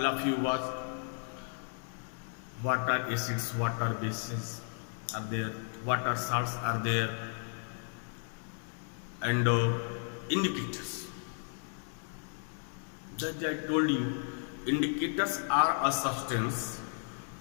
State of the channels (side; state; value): right; silent; 55 dB below the other